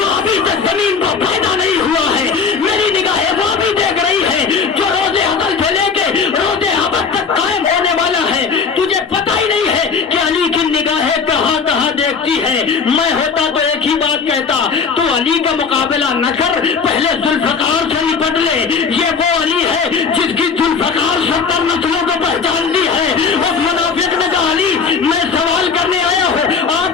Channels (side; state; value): right; quieter; 5.7 dB